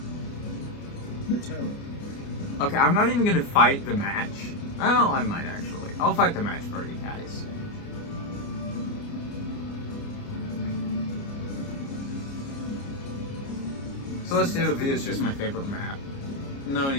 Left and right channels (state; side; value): late; right; 29 ms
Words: Matera. Okay, I'm not even gonna fight the match. Oh, I might actually. I'll fight the match for you guys. Celestia V is just my favorite map. No